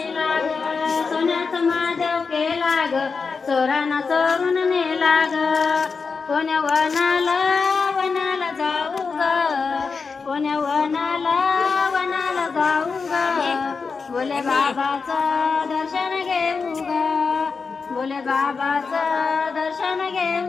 ग सोन्याचा महादेव केला ग चोरानं चोरून नेला ग कोण्या वनाला वनाला जाऊ ग कोण्या वनाला जाऊ ग बोले बाबाचं दर्शन घेऊ ग बोले बाबाचं दर्शन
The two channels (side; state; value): right; quieter; 4.9 dB